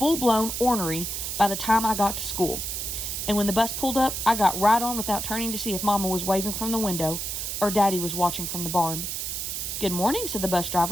ornery by the time I got to school. And when the bus pulled up, I got right on without turning to see if Mama was waving from the window or Daddy was watching from the barn. "Good morning," said the bus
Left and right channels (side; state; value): right; noise; hiss, 4 dB below the sound